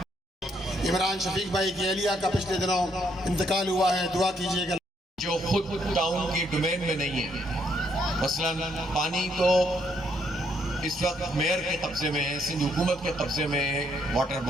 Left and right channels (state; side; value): normal; both; correlation 0.72